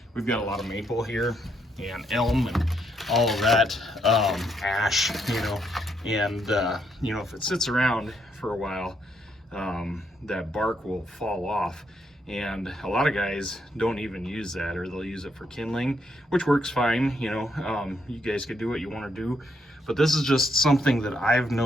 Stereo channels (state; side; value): normal; both; correlation 0.75